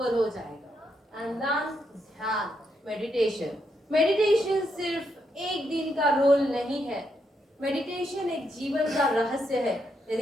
हो जाएगा। एंड देन ध्यान, मेडिटेशन। मेडिटेशन सिर्फ एक दिन का रोल नहीं है, मेडिटेशन एक जीवन का रहस्य है।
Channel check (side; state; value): both; normal; correlation 0.79